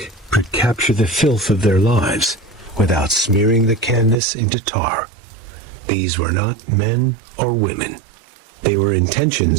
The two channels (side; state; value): left; drops out; at 4.2 s